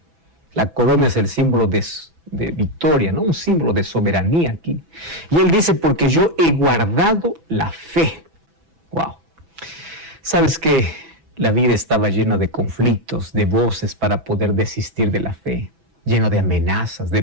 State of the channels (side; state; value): left; late; 6.1 ms